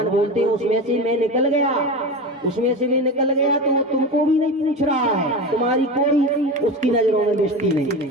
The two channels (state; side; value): normal; both; correlation 0.25